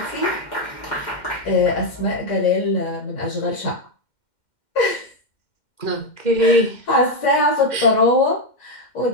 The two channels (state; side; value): late; right; 2.1 ms